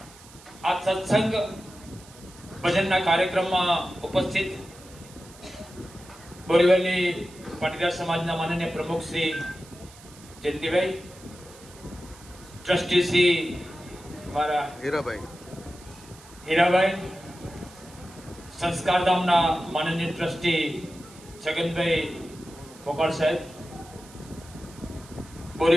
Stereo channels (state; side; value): noise; right; hiss, 21 dB below the sound